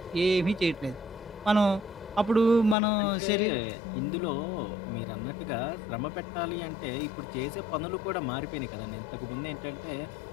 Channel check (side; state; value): right; drops out; at 2.8 s